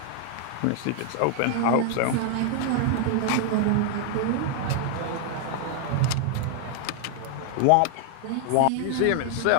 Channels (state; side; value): different; both; correlation 0.00